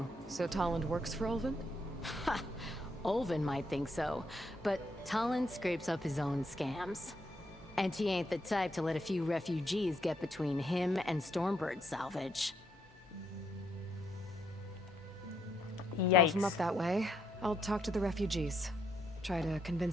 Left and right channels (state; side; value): normal; both; correlation 0.75